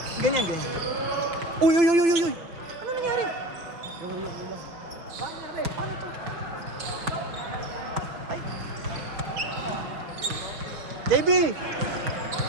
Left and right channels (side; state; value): left; late; 5.3 ms